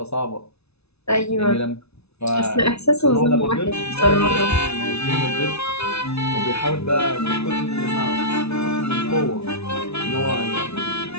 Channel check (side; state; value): right; late; 0.80 ms